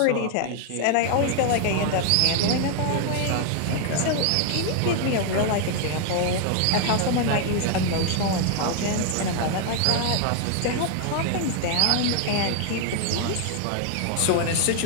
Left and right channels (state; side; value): different; both; correlation 0.00